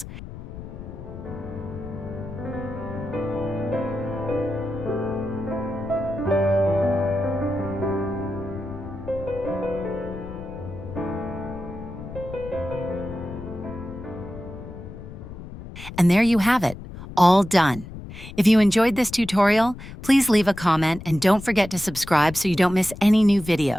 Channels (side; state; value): left; noise; rumble, 12 dB below the sound